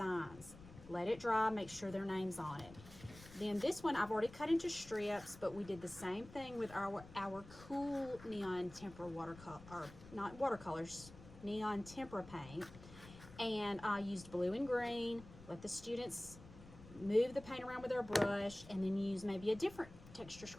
Let it dry, make sure their name's on it. Then this one I've already cut into strips, but we did the same thing with our cool neon tempera watercolor, or not watercolors, neon tempera paint. And I used blue and green. Let the students move the paint around with their brush, and then use maybe a different texture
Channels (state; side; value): noise; left; rumble, 18 dB below the sound